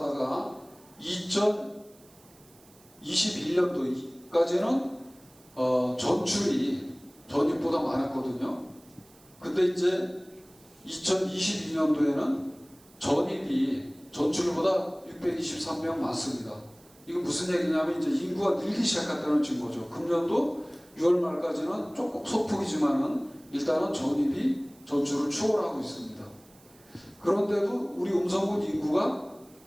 2021년도까지는 전출이 전입보다 많았거든요. 근데 이제 2022년도에는 전입이 전출보다 623명 많습니다. 이거 무슨 얘기냐면 이제 인구가 늘기 시작했다는 증거죠. 금년도 6월 말까지는 조금 소폭이지만은 일단은 전입이 전출을 추월하고 있습니다. 그런데도 우리 음성군 인구가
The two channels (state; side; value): noise; right; hiss, 27 dB below the sound